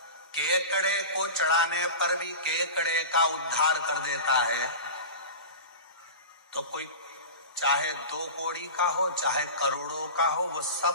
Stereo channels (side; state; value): both; inverted; correlation -0.31